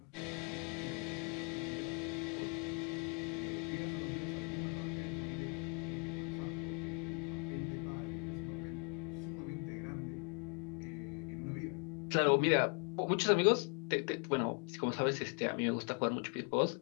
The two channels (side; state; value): right; quieter; 33.8 dB